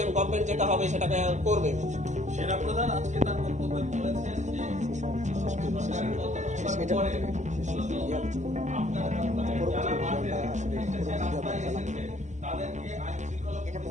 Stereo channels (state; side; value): late; left; 0.34 ms